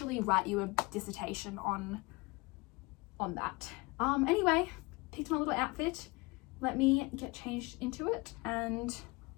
write you a dissertation on that. Anyway, picked my little outfit. Let me get changed into it and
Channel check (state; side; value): quieter; right; 25.0 dB